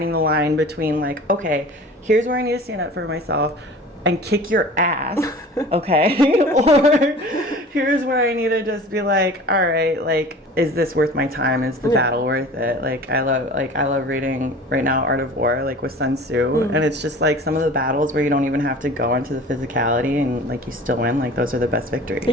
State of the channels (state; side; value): normal; both; correlation 0.41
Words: the line between like, okay, here's where I need to stand up for myself and kick your ass, okay? Or here's where I need to just be like, all right, like, is this worth my time? Is the battle worth it? Like I love reading right now Art of War, like with Sun Tzu, and it's just like some of the battles where you don't even have to go into the physicality and like you still win, like those are the best victories.